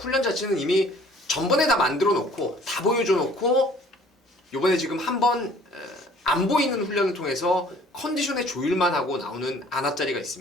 자체는 이미 전번에 다 만들어 놓고 다 보여줘 놓고 요번에 지금 한번 안 보이는 훈련을 통해서 컨디션의 조율만 하고 나오는 안압자리가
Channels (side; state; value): both; normal; correlation 0.54